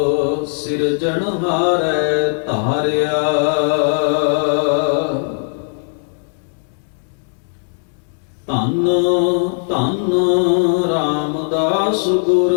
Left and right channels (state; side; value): silent; right; digital silence